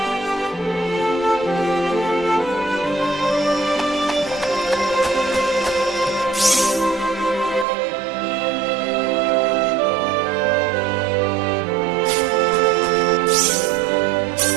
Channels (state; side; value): drops out; left; at 7.7 s